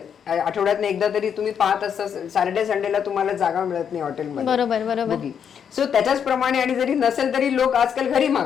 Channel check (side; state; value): right; quieter; 7.8 dB